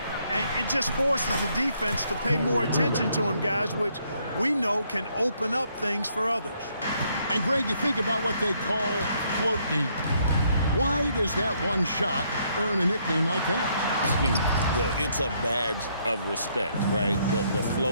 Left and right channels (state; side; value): inverted; both; correlation -0.71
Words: And it just forces the defense to pay more attention to him, guys, which we know can open up things for others. And Greg, you think about what they call float game. Why does that one shot earn a nickname like that? I mean, it's a badge of respect, right? The